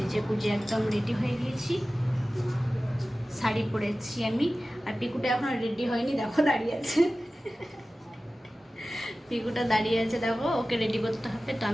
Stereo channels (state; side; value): normal; both; correlation 0.96